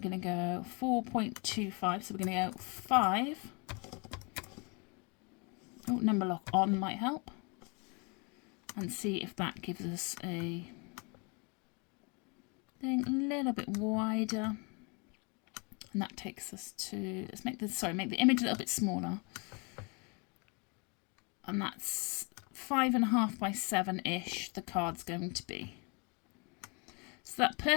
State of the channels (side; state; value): right; quieter; 32.2 dB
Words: going to go 4.25. So we're going to go 5. Oh, number lock on might help. And see if that gives us a thing a little bit wider. And that takes us to, let's make the image a little bit smaller. And that's 5.5 by 7-ish the card's going to be. So that